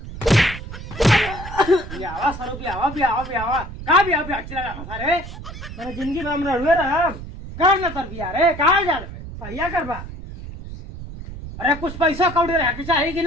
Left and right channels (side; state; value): right; noise; rumble, 11 dB below the sound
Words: बियावा सरो बियावा का बियावा चला रहा सारे मैंने जिंदगी में हम रहुए रहा कर ना तर बिया रे कहाँ जा रहे पहिया करबा अरे कुछ पैसा कौड़ी रह के चाहिए कि